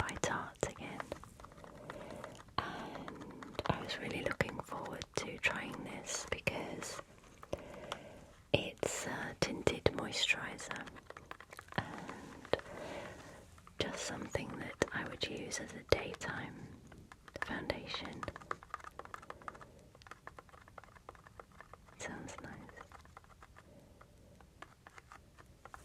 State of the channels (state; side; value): identical; both; correlation 1.00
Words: Tarte again, and I was really looking forward to trying this because it's a tinted moisturiser and just something that I would use as a daytime foundation. Sounds nice.